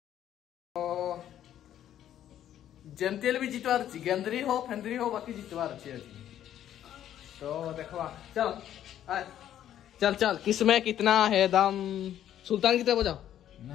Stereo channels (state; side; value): quieter; right; 11.1 dB